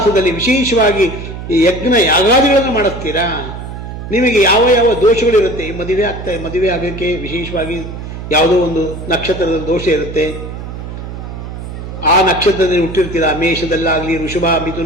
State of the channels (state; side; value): noise; right; hum, 9 dB below the sound